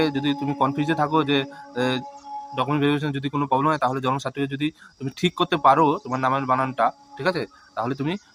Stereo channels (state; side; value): identical; both; correlation 1.00